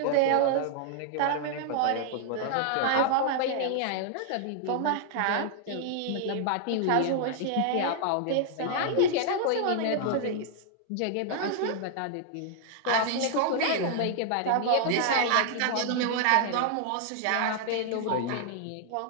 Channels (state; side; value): different; both; correlation 0.00